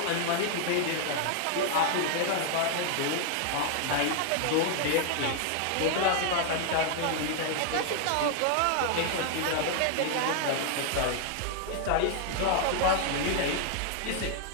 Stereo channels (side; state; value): both; different; correlation 0.00